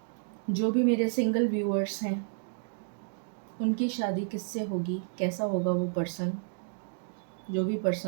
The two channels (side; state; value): left; silent; digital silence